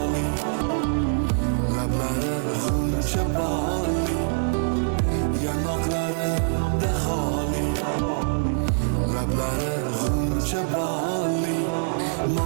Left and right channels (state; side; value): silent; left; 62 dB below the other